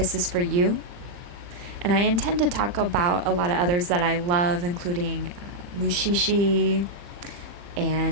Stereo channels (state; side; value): late; left; 40 ms